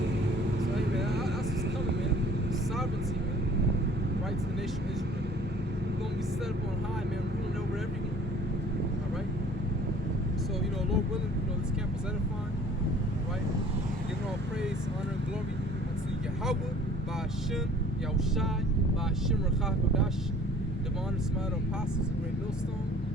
So, hey, man, that's what's coming, man. Sovereignty, man. Right to the nation of Israel. We're going to be set up on high, man, ruling over everyone. All right? So, Lord willing, this camp was edifying. All right? Giving all praise, honor, and glory unto Yahweh, by Hashem, Yahushai, by Hashem, Rachach, Kodash, divine and smile apostles, a great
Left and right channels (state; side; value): normal; both; correlation 0.52